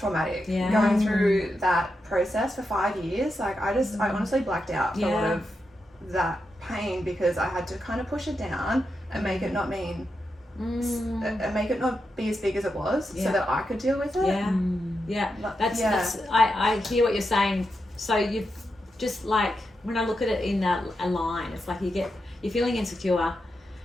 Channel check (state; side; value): normal; both; correlation 0.86